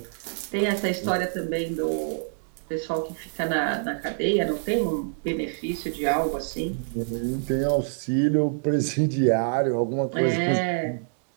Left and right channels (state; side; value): silent; left; digital silence